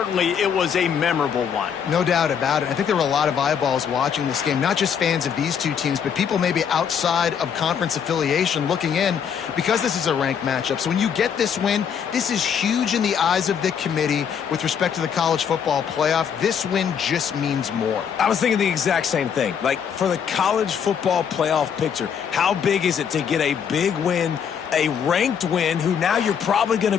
it was a memorable one. No doubt about it. I think there were a lot of eyeballs watching this game, not just fans of these two teams, but people maybe outside of conference affiliation looking in because this is a ranked matchup. So when you get this win, this is huge in the eyes of the committee with respect to the college football playoff. This win just means more. I was thinking the exact same thing. Like, for the college football playoff picture, how big is it to get a big win, a ranked win, who now you're probably going to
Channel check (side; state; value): right; quieter; 7.6 dB